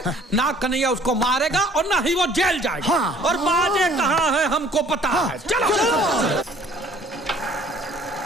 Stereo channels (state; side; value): normal; both; correlation 0.55